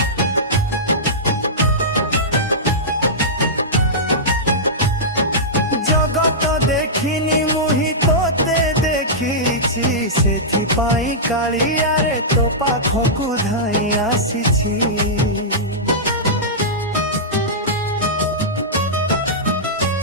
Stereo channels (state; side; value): normal; both; correlation -0.13